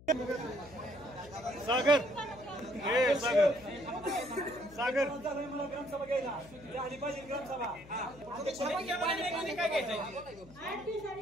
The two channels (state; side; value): noise; left; hum, 21 dB below the sound